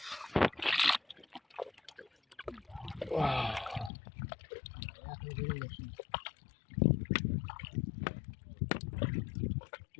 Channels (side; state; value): right; drops out; at 3.9 s